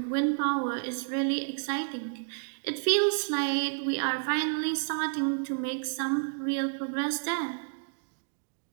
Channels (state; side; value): silent; left; digital silence